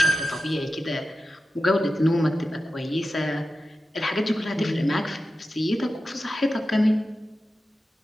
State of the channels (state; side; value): normal; both; correlation 0.92